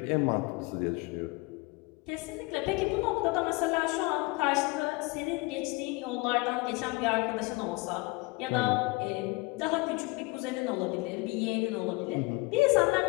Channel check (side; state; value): right; quieter; 25.2 dB